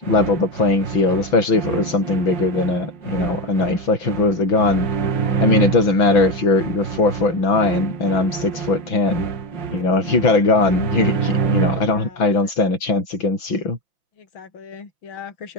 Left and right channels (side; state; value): right; late; 6.1 ms